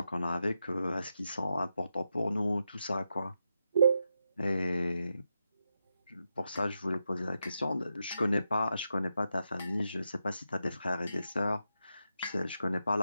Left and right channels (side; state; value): both; inverted; correlation -0.86